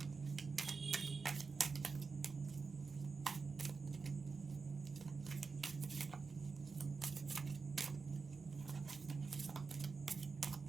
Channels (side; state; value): left; quieter; 4.7 dB